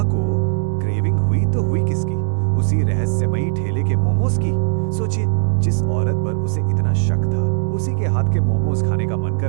को क्रेविंग हुई तो हुई किसकी? उसी रहस्यमयी ठेले के मोमोज की। सोचिए, जिस औरत पर उसे इतना शक था, उसी के हाथ के मोमोज खाने का मन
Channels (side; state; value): left; silent; 61 dB below the other